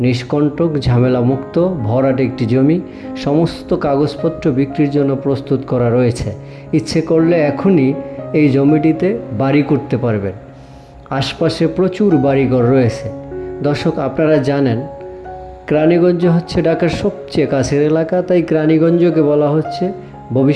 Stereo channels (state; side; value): identical; both; correlation 1.00